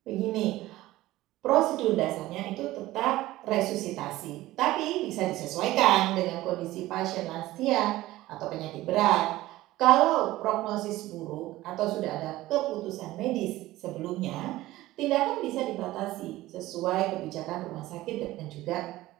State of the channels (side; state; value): left; quieter; 16.9 dB